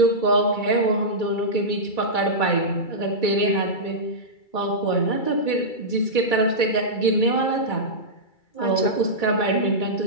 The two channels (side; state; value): right; late; 2.3 ms